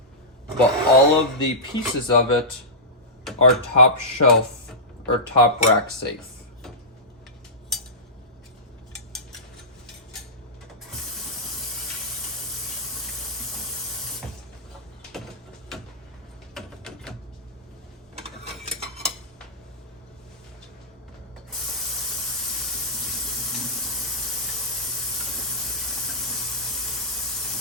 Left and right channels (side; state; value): both; normal; correlation -0.15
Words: but all of the pieces of it are top shelf or top rack safe.